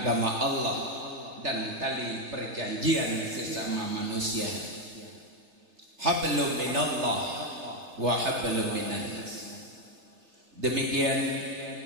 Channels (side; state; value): left; late; 3.3 ms